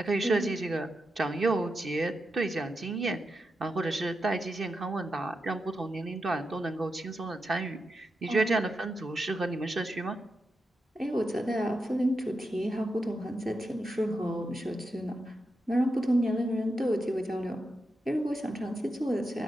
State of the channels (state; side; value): normal; both; correlation 0.87